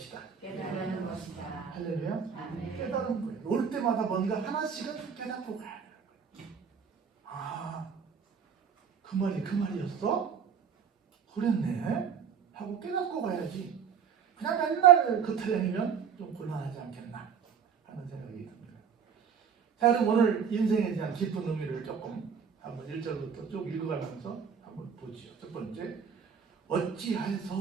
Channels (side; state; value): left; quieter; 7.1 dB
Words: 깨달은 것이다. 할렐루야. 아멘. 깨달은 거예요. 올 때마다 뭔가 하나씩은 깨닫고 가야 돼요. 아, 그 말이었어? 그랬네? 하고 깨닫고 가야지. 그냥 맨날 그 타령이면 좀 곤란하지 않겠나 하는 생각이 듭니다. 자, 그럼 오늘 인생에 대한 깊은 의미를 조금 한번 1절부터 쭉 읽어가면서 한번 보지요. 첫 번째,